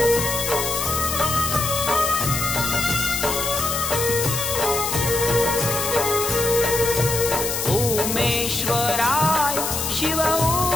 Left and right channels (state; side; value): noise; left; hiss, 2 dB below the sound